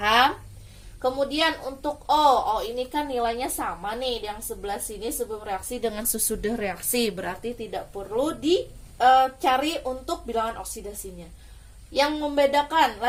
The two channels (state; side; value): identical; both; correlation 1.00